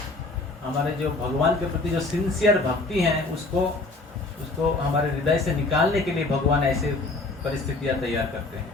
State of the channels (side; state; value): right; quieter; 3.2 dB